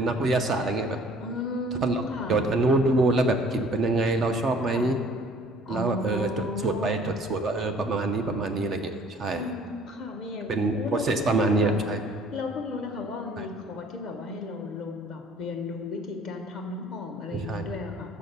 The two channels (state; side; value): normal; both; correlation 0.53